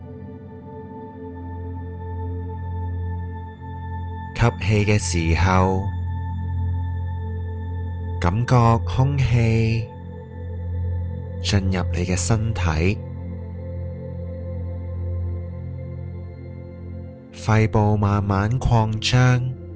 吸氣嘅時候，感覺空氣進入你嘅身體，肺部慢慢擴張。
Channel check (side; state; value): both; identical; correlation 1.00